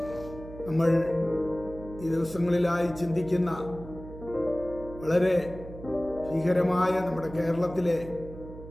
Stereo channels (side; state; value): right; noise; hum, 14 dB below the sound